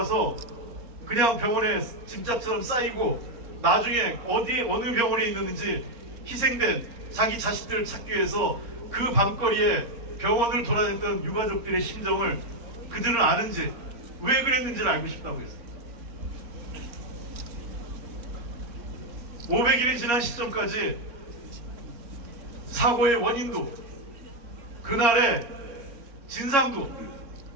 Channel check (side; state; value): left; late; 4.3 ms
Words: 그냥 병원에 짐짝처럼 쌓이고 나중에 어느 병원에 있는지 희생된 자기 자식들을 찾기 위해서 그 밤거리에 병원을 돌아다녔던 유가족들의 심정을 그들은 아는지, 왜 그랬는지를 알고 싶다고 했습니다. 500일이 지난 시점까지 사고의 원인도, 그날의 진상도,